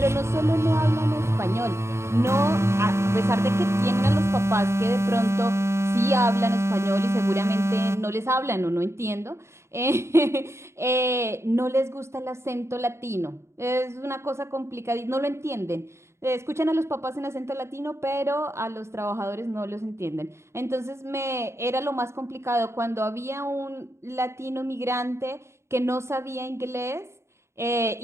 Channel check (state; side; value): late; left; 0.13 ms